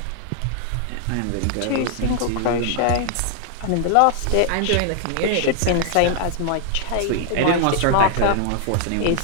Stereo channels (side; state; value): both; different; correlation 0.00